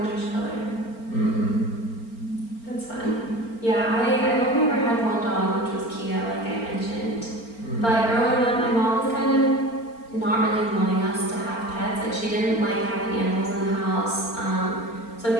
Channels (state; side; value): late; right; 4.4 ms